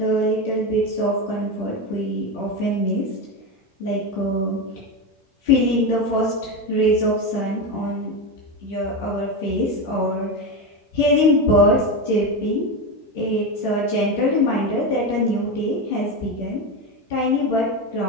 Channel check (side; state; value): both; normal; correlation 0.16